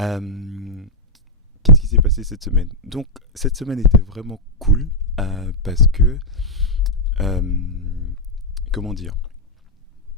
Qu'est-ce qui s'est passé cette semaine? Donc, cette semaine était vraiment cool parce que, comment dire,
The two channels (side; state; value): both; normal; correlation -0.06